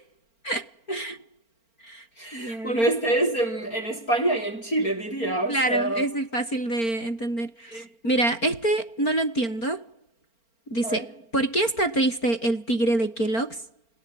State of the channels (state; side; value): late; right; 4.4 ms